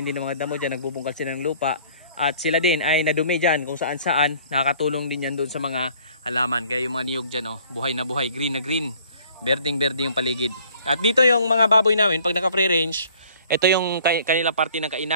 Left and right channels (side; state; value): both; inverted; correlation -0.55